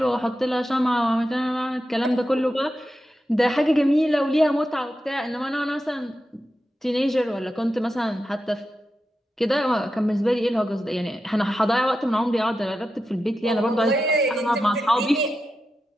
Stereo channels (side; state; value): both; normal; correlation 0.90